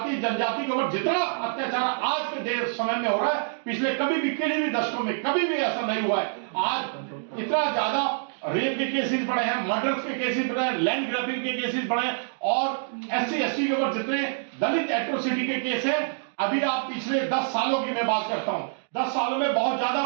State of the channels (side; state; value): left; silent; digital silence